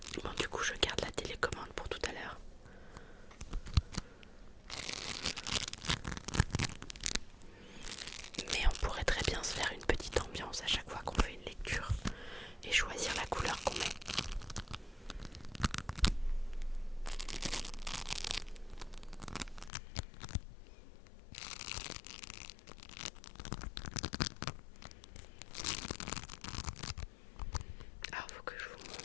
Bon, du coup, je garde la télécommande pour tout à l'heure. Mais on pourrait très bien se faire une petite ambiance à chaque fois qu'on fait une lecture et choisir la couleur qu'on met. Alors, faut que je vous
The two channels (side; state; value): right; drops out; at 19.7 s